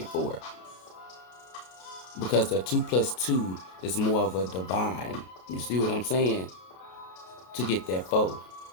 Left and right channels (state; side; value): late; right; 32 ms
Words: 4. Because the 2 plus 2 is more of a divine. You see what I'm saying? To get that 4,